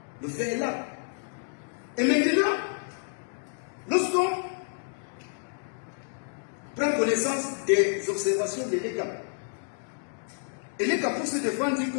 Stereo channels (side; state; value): right; silent; digital silence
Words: Le fait est là. Et maintenant, lorsqu'on prend connaissance des observations de l'ECA, et l'ECA pour se défendre dit